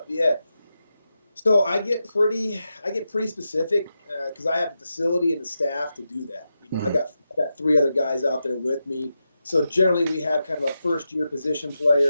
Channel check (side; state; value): both; inverted; correlation -0.88